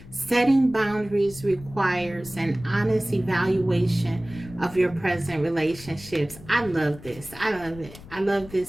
Setting boundaries requires an honest evaluation of your present relationships. I love this. I love it. I love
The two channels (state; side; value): noise; left; rumble, 18 dB below the sound